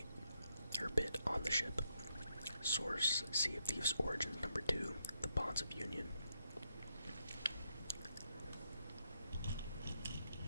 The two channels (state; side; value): inverted; both; correlation -0.79